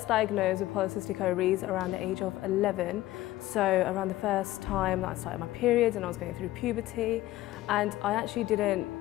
diagnosed with polycystic ovaries around the age of 11, so around the first time that I started my periods and I was going through puberty, and I actually didn't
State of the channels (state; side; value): quieter; right; 16.1 dB